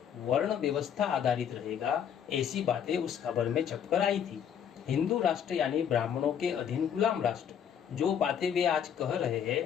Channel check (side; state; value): right; quieter; 8.6 dB